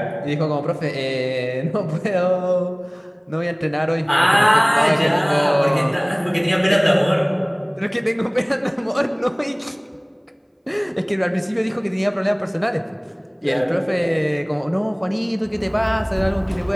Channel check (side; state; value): both; identical; correlation 1.00